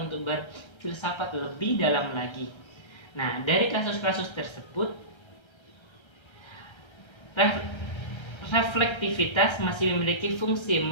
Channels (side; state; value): right; late; 1.3 ms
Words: untuk berfilsafat lebih dalam lagi. Nah, dari kasus-kasus tersebut, reflektivitas masih memiliki fungsi